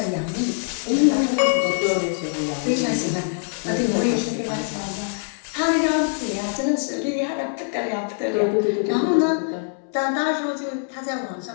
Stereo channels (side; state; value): right; silent; 63 dB below the other